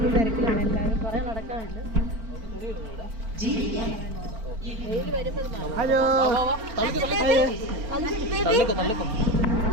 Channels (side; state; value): left; late; 4.5 ms